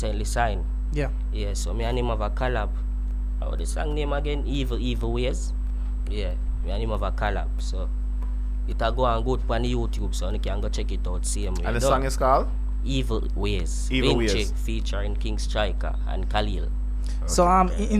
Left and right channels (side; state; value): both; identical; correlation 1.00